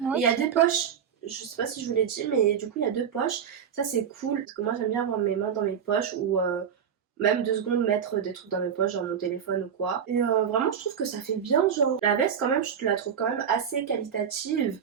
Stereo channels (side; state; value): left; quieter; 7.8 dB